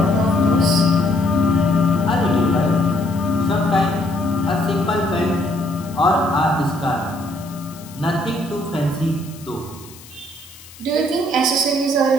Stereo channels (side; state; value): left; noise; hiss, 20 dB below the sound